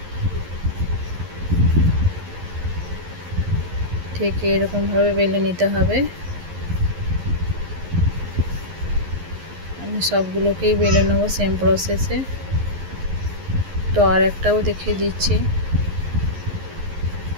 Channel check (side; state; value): left; late; 11 ms